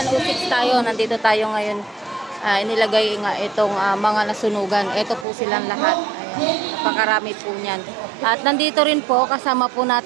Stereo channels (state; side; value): drops out; left; at 5.2 s